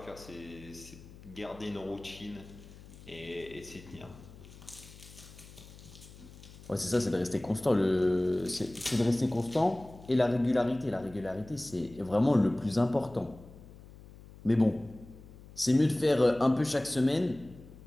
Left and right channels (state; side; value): noise; left; hum, 19 dB below the sound